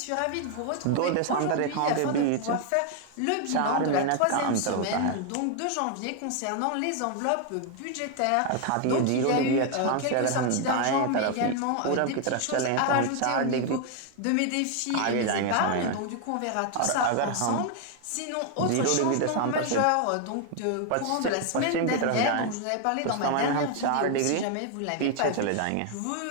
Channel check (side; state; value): both; different; correlation 0.00